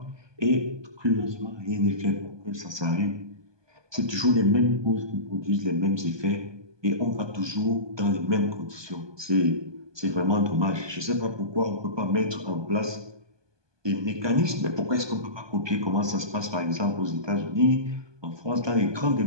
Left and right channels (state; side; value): late; left; 1.2 ms